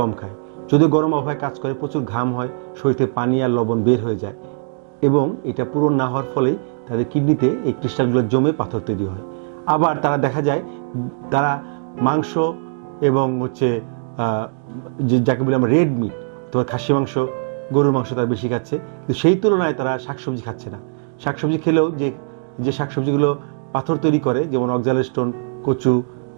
খায়। যদিও গরম আবহাওয়ায় কাজ করে, প্রচুর ঘাম হয়, শরীর থেকে পানি আর লবণ বের হয়ে যায়, এবং এটা পূরণ না হওয়ার ফলেই তাদের কিডনিতে এই ক্রিস্টালগুলো জমে পাথর তৈরি হয়। আবার তারা দেখা যায় তারা মাংস এবং যাকে বলি আমরা রেড মিট, অথবা খাসি মাংস, গরুর মাংস তারা বেশি খাচ্ছে, কিন্তু সেই তুলনায় তারা শাকসবজি খাচ্ছে না। শাকসবজি খেলেও যে শাকসবজিগুলো পাথর তৈরি করে, যেমন অক্সালেস্টোন, কচু,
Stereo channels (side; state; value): left; silent; 65 dB below the other